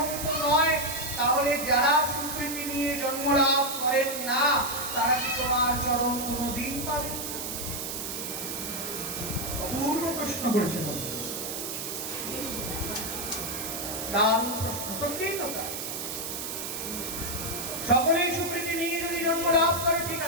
তো নয়। তাহলে যারা সুকৃতি নিয়ে জন্ম লাভ করেন না, তারা কি তোমার চরণ কোনদিন পাবে? পূর্ব প্রশ্ন করেছেন, দারুণ প্রশ্ন, সত্যিই তো তাই। সকলেই সুকৃতি নিয়ে যদি জন্ম লাভ করে, ঠিক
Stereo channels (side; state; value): right; noise; hiss, 5 dB below the sound